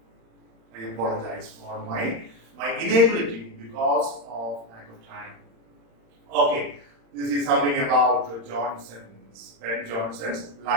I apologize for my inability because of lack of time. Okay, this is something about Ben Jonson's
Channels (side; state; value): left; late; 35 ms